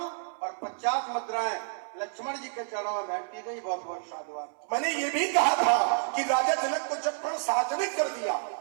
और 50 मुद्राएं लक्ष्मण जी के चरणों में भेंटी गई। बहुत बहुत साधुवाद। मैंने ये भी कहा था कि राजा जनक को जब प्रण सार्वजनिक कर दिया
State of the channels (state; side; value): silent; left; 58 dB below the other